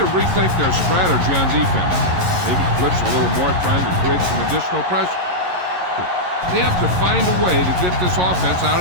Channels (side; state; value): left; late; 11 ms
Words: rethink their strategy on defense. Maybe blitz a little more, trying to create some additional pressure. They have to find a way to get this offense out